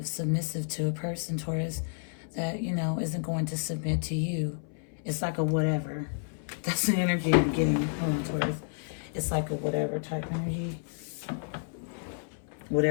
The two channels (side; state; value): right; silent; 57 dB below the other